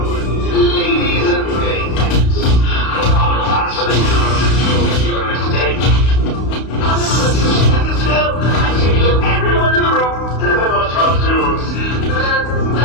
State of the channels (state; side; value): late; right; 32 ms